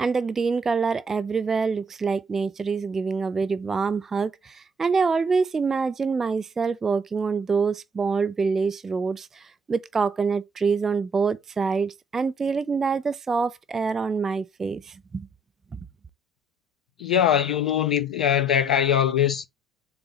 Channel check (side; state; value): both; normal; correlation 0.62